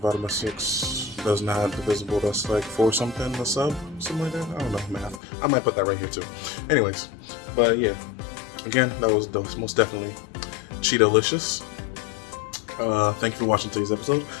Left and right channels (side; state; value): right; drops out; at 5.2 s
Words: by 6 does not divisible. That's like 4 something a sub, something like that. I don't know math. I might put that right here too. Anyways, but yeah, again, that was most definitely Cheeto-licious. Thank you for watching today's episode.